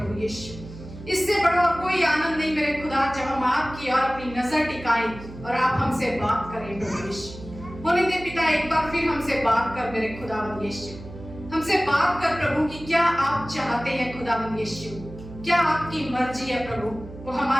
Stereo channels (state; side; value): noise; right; hum, 14 dB below the sound